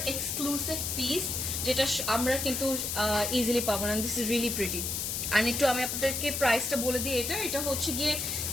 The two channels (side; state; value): left; noise; hiss, 2 dB below the sound